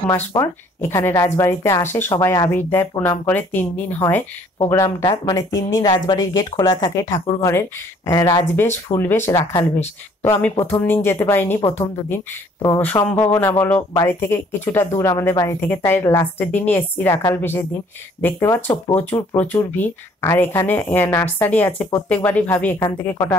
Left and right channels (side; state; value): both; normal; correlation 0.59